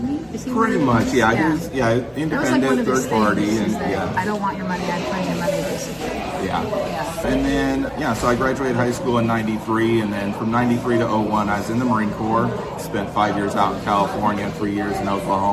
he? Is he Pretty one of much, those? yeah. Yeah. He was, yeah, That was like independent, one of his third party, things, and is that yeah. I don't want your money, I claim your money, basically. Yeah. Yeah. And then, yeah, so I graduated high school in 93, and then from 93 to 01, I was in the Marine Corps, spent 5 years out in California, 3 years in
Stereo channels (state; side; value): identical; both; correlation 1.00